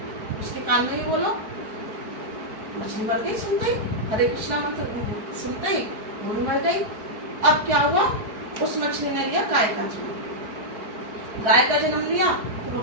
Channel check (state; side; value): late; left; 4.8 ms